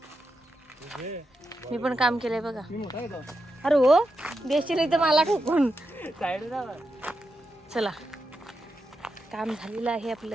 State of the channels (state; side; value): normal; both; correlation 0.87